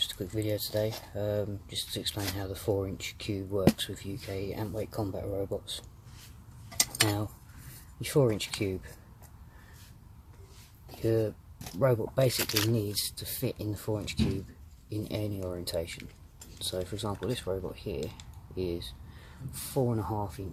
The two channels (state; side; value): identical; both; correlation 1.00